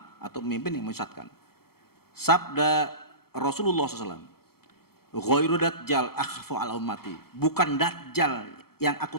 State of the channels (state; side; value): late; right; 0.95 ms